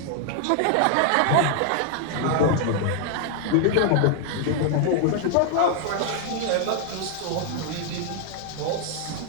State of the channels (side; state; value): both; different; correlation 0.00